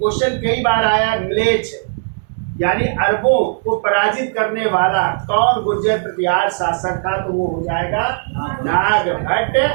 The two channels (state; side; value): silent; left; 68 dB below the other